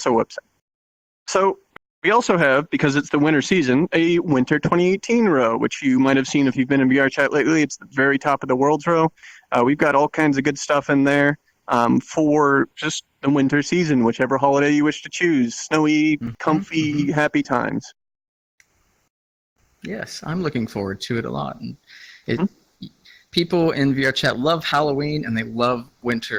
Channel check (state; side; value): identical; both; correlation 1.00